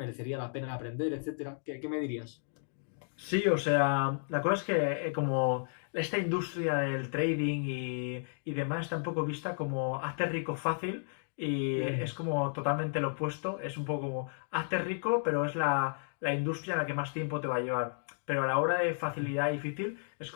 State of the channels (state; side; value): silent; right; digital silence